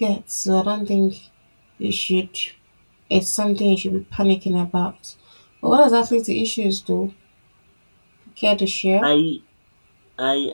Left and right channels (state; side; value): inverted; both; correlation -1.00